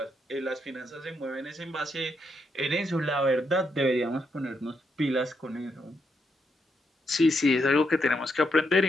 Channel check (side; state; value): both; normal; correlation 0.79